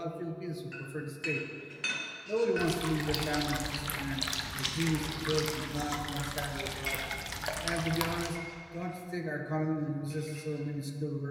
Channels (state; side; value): identical; both; correlation 1.00